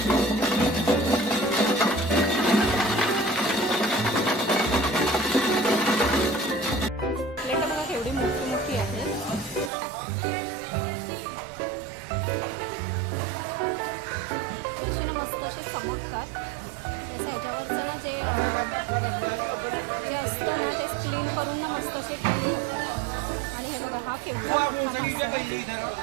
प्लेट बघा केवढी मोठी मोठी आहे. अशी ना मस्त असे चमकतात. तसं ह्याच्यावरचं ना जे असतं ना ते क्लीन करून ना मस्त असे क्लीन होतात. आणि हे बघा हा केवढा मोठा मासा आहे.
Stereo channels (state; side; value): drops out; left; at 9.7 s